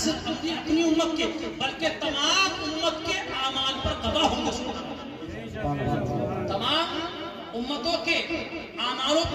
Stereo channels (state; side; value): identical; both; correlation 1.00